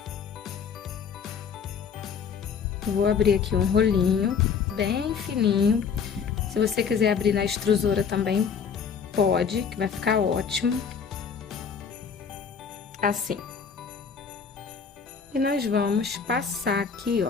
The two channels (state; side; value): quieter; right; 6.4 dB